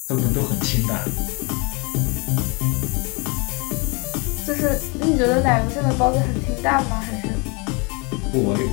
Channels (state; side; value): quieter; right; 30.3 dB